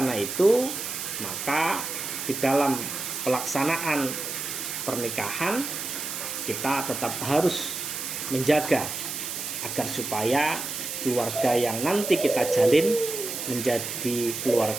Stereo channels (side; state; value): right; noise; hiss, 5 dB below the sound